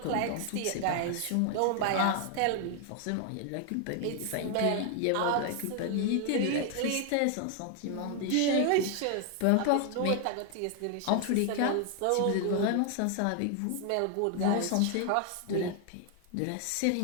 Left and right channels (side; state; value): both; different; correlation 0.00